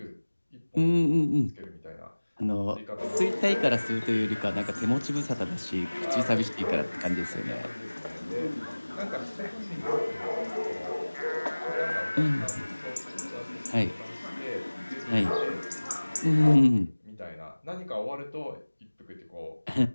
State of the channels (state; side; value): inverted; both; correlation -1.00